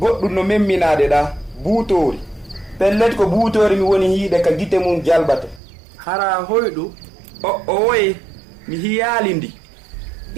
no memminade ɗa buutori pellet ko buutori mi woni hiide ka gite mum jalbata. Hara hoyɗu o woye mi hiyali ndi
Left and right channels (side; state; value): left; drops out; at 5.6 s